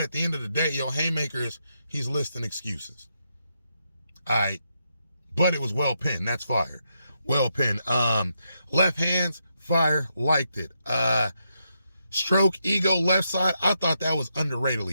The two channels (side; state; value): both; inverted; correlation -0.81